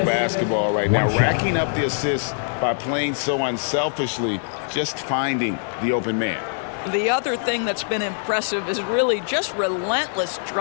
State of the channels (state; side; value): silent; right; digital silence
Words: basketball right now, racking up the assists by playing so unselfishly, just finding the open man. The other thing that's been impressive is really just relentless